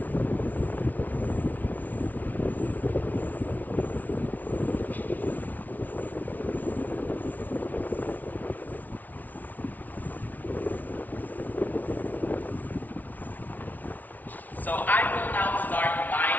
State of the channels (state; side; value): late; right; 0.079 ms